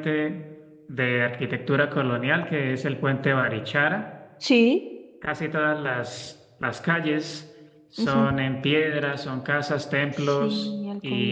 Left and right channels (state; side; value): identical; both; correlation 1.00